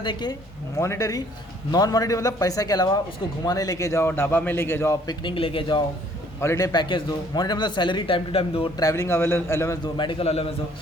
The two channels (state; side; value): normal; both; correlation 0.60